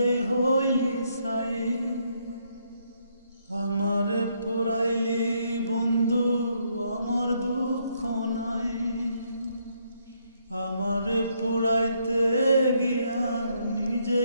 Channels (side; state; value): both; inverted; correlation -0.74